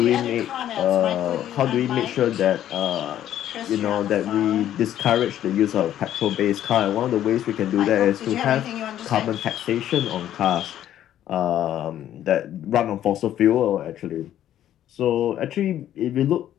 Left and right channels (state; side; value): quieter; right; 11.6 dB